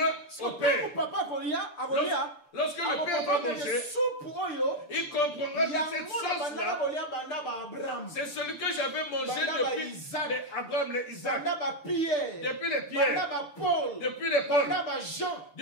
au Père. Lorsque le Père va manger, il comprendra que cette sauce-là, c'est celui que j'avais mangé depuis Abraham, les Isaac, depuis les Pierre, depuis les Paul,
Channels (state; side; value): late; right; 6.8 ms